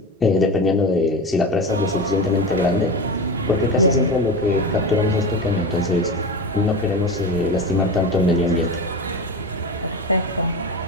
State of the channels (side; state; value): both; normal; correlation 0.24